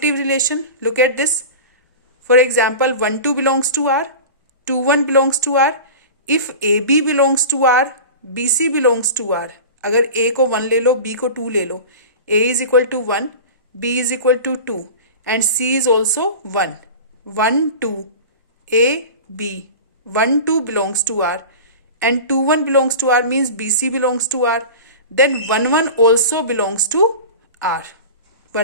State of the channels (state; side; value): inverted; both; correlation -0.33